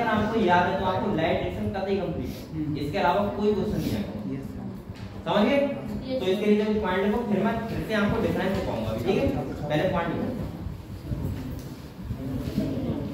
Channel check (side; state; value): both; identical; correlation 1.00